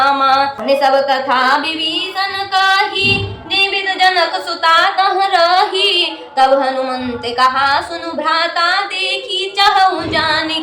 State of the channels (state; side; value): identical; both; correlation 1.00